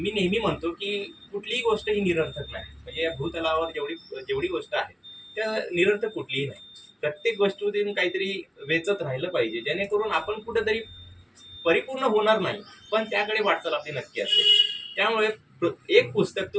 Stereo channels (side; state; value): both; identical; correlation 1.00